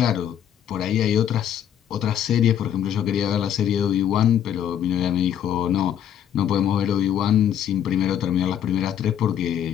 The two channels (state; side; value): quieter; right; 9.8 dB